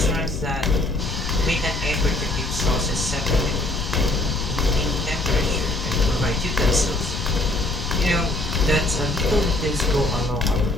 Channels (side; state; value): left; noise; rumble, 6 dB below the sound